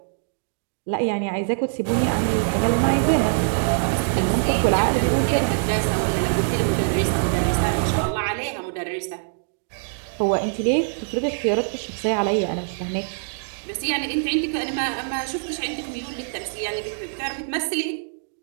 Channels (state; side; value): silent; left; digital silence